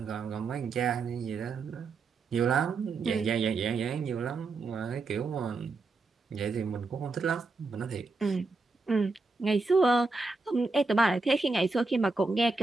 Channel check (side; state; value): left; quieter; 3.8 dB